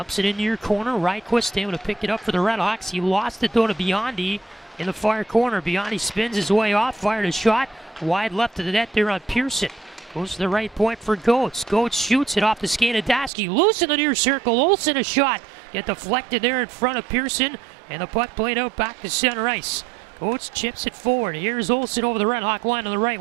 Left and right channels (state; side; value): drops out; left; at 13.3 s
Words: it into your corner. Ryquist able to pick it up for the RedHawks. He lost it though to Biondi in the far corner. Biondi spins his way off. Fired a shot. Wide left of the net there on Pearson. Goes to the right point for Goetz. Goetz shoots it off the skate of Dasky. Loose in the near circle. Olsen a shot. Get deflected there in front of Pearson. And the puck played out back to center ice. Goetz chips it forward. Here's Olsen over the RedHawk line on the right